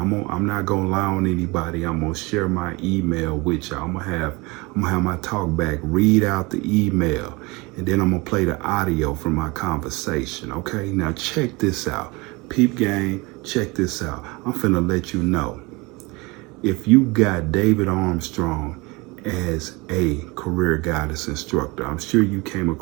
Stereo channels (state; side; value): quieter; left; 25.3 dB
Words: I'm not gonna lie on anybody. I'm gonna share my email with y'all. I'm gonna have my talk back, read out the email, and then I'm gonna play the audio from my conversation. Okay? Now check this out. Peep gang, check this out. I'm finna let you know. If you got David Armstrong as a career guidance instructor, I'm sure you came